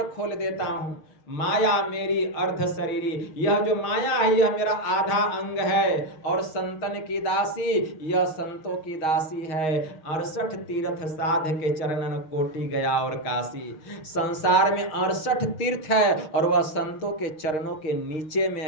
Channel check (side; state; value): right; late; 6.4 ms